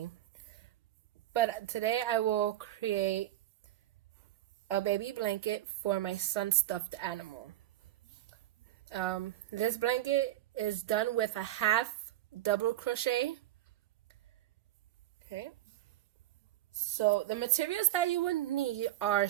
But today I will create a baby blanket for my son's stuffed animal. This blanket is done with a half double crochet. Okay. So the materials that you would need are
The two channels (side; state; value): left; quieter; 14.5 dB